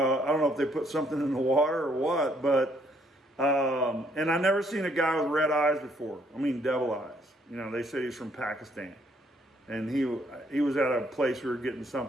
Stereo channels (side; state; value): both; normal; correlation 0.68